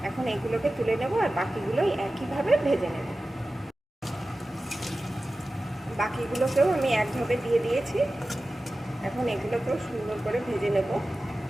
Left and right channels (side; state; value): both; normal; correlation 0.95